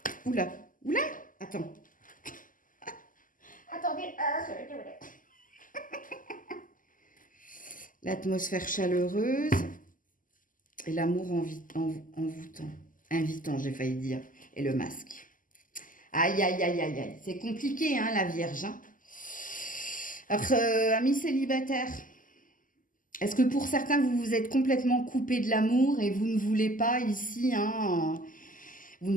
Oula, oula, attends. Attendez, l'atmosphère chaleureuse et l'amour envoûtant. Invitant, j'ai failli dire. Et le masque. Aïe, aïe, aïe, aïe, aïe. C'est compliqué, hein, la Vierge. Hein. Alors, amis célibataires, est-ce que pour certains, vous vous êtes complètement coupé de l'amour et vous ne voulez pas ici, hein, vous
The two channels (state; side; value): late; right; 0.39 ms